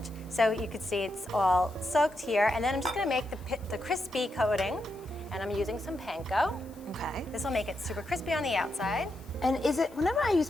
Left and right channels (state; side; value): noise; left; hiss, 26 dB below the sound